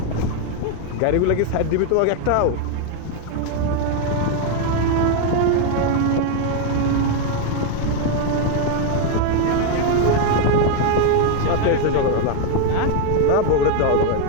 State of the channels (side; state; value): both; different; correlation 0.01